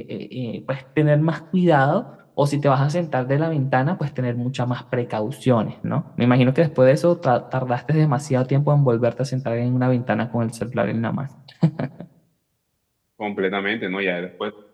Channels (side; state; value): both; identical; correlation 1.00